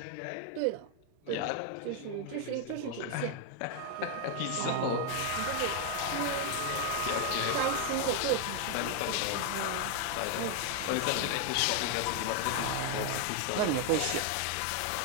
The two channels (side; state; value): both; different; correlation 0.00